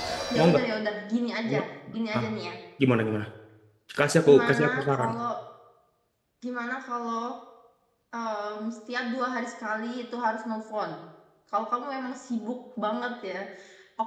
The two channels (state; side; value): identical; both; correlation 1.00